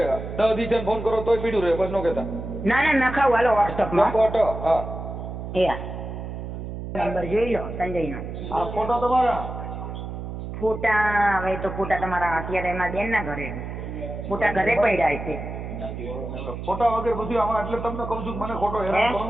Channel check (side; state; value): right; noise; hum, 7 dB below the sound